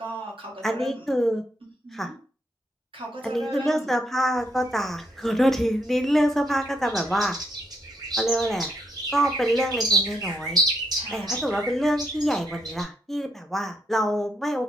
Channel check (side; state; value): both; normal; correlation 0.78